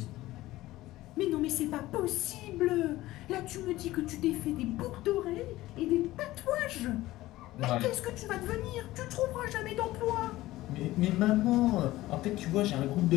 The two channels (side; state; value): right; quieter; 16.9 dB